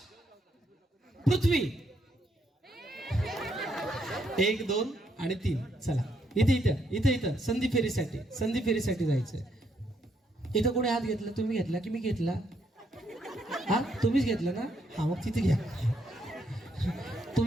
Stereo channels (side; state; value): both; normal; correlation 0.74